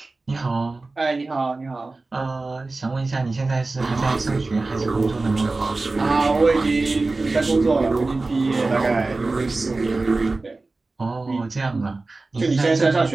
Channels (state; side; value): quieter; left; 3.4 dB